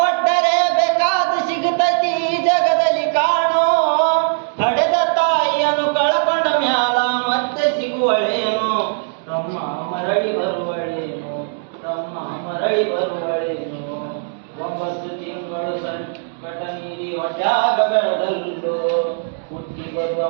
ಬೇಕಾದ ಸಿಗುತ್ತೈತಿ ಈ ಜಗದಲ್ಲಿ ಕಾಣೋ. ಹಡೆದ ತಾಯಿಯನ್ನು ಕಳಕೊಂಡ ಮ್ಯಾಲ ಮತ್ತೆ ಸಿಗುವಳೇನು. ತಮ್ಮ ಮರಳಿ ಬರುವಳೇನು ತಮ್ಮ ಮರಳಿ ಬರುವಳೇನು. 9 ತಿಂಗಳು ಸಂಕಟ ನೀಡಿ ಹೊಟ್ಯಾಗ ಬೆಳೆದಲ್ಲು. ಹುಟ್ಟಿ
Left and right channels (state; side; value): silent; left; digital silence